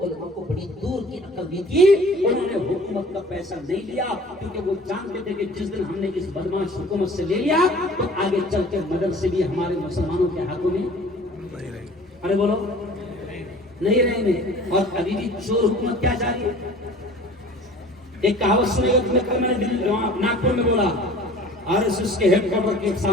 علماء کو بڑی دور کی عقل دی تھی، انہوں نے حکومت کا پیسہ نہیں لیا، کیونکہ وہ جانتے تھے کہ جس دن ہم نے اس بدماش حکومت سے لے لیا تو آگے چل کے مدرسے بھی ہمارے مسلمانوں کے ہاتھوں میں، ارے بولو، نہیں رہیں گے۔ اور ابھی بھی چور حکومت کیا جاری ہے؟ ایک کہاوت سنے گا تمہیں، کل میں نے ناگپور میں بولا، RSS کے ہیڈ کوارٹر کے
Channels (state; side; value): normal; both; correlation 0.46